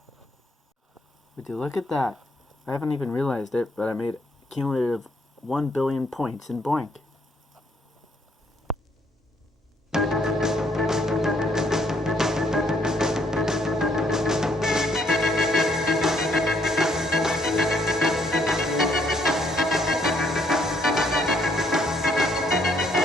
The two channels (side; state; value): both; normal; correlation 0.69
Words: Would you look at that? I haven't even realized it, but I made a cumulative 1 billion points in BOINC.